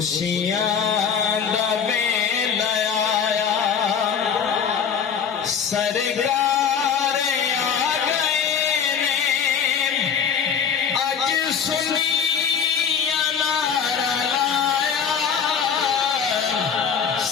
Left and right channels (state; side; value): quieter; right; 7.1 dB